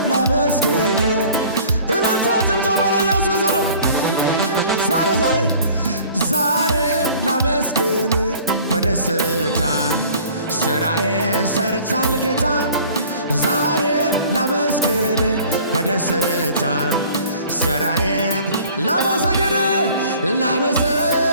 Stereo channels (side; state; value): both; inverted; correlation -0.49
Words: ላመስግን እልልታ ጭብጨባ ለኢየሱስ ዛሬም ላመስግን በደስታ ስራዬን ሰርቷል ጌታ ዛሬም ላመስግን በደስታ ስራዬን